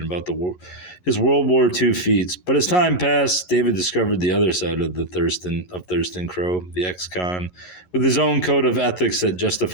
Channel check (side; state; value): right; late; 11 ms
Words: about his World War II feats. But as time passed, David discovered the other side of Thurston Crow, the ex-con, with his own code of ethics that